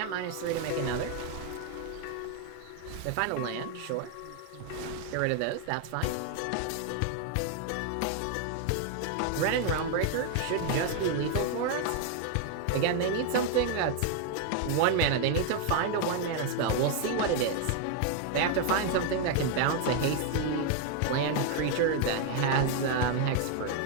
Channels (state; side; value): different; both; correlation 0.01